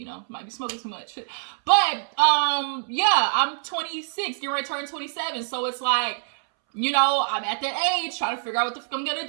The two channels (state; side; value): silent; left; 62 dB below the other